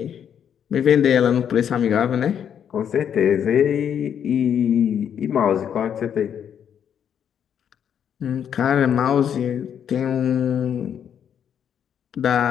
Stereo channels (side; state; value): right; quieter; 8.7 dB